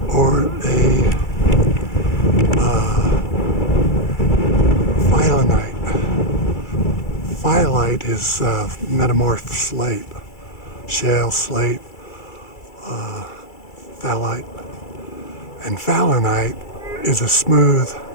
or a Phyllonite. Phyllite is metamorph slate, shale slate, phthalite, and Phyllonite is a smooth,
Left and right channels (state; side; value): late; right; 2.3 ms